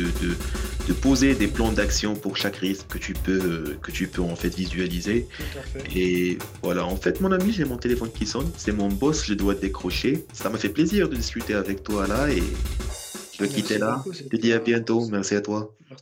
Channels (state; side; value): identical; both; correlation 1.00